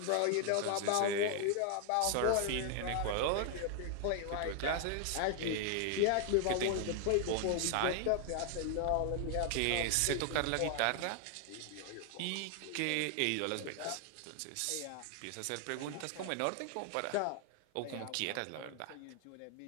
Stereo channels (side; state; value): both; different; correlation 0.00